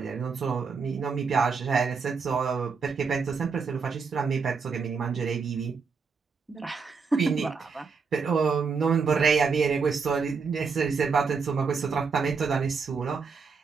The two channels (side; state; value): left; quieter; 5.2 dB